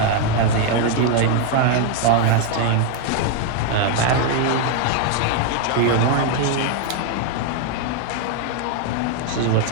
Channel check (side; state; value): both; different; correlation 0.00